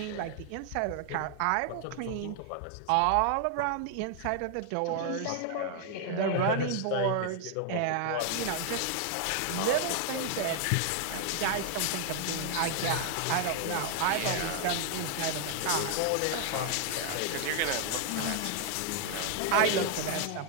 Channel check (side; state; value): both; different; correlation 0.00